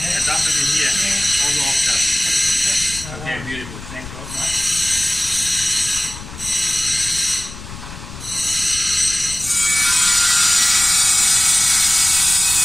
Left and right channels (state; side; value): noise; left; rumble, 13 dB below the sound